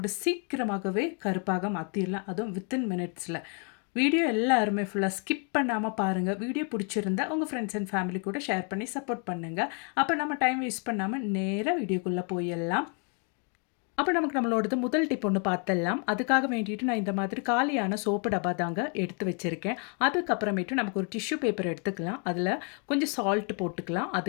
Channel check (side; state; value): right; quieter; 39.0 dB